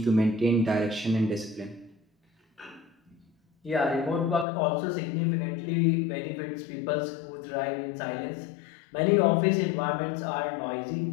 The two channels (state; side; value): drops out; right; at 4.5 s